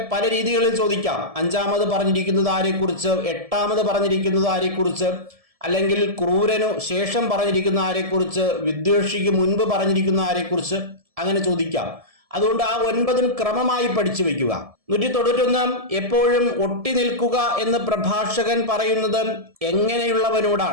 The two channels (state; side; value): late; left; 1.7 ms